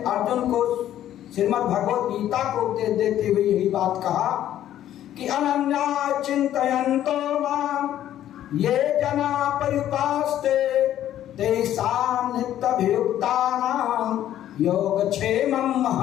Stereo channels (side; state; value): right; quieter; 11.9 dB